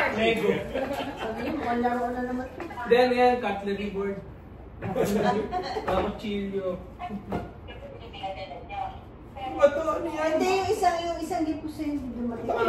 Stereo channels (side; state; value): both; identical; correlation 1.00